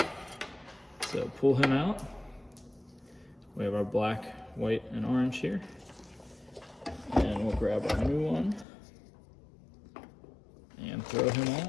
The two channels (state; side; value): drops out; right; at 8.7 s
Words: So pull him out. We have our black, white, and orange here. And we'll grab our new one and throw him